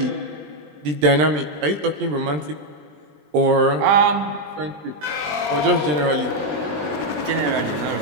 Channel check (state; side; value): late; left; 20 ms